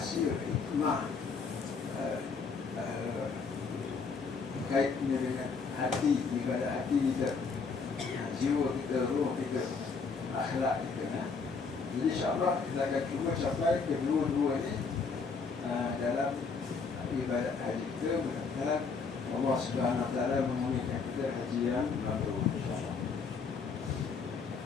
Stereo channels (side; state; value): right; quieter; 5.0 dB